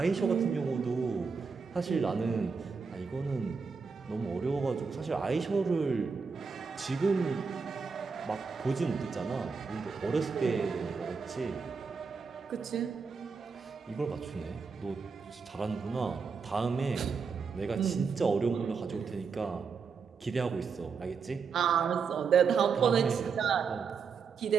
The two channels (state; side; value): quieter; left; 5.4 dB